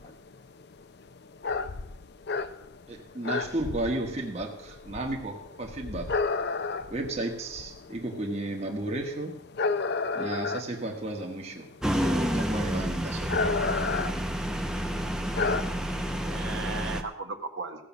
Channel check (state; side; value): normal; both; correlation 0.40